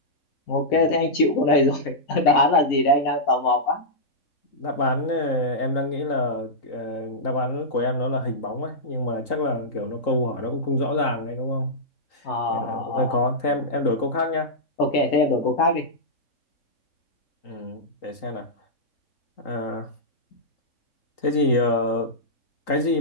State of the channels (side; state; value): right; late; 3.8 ms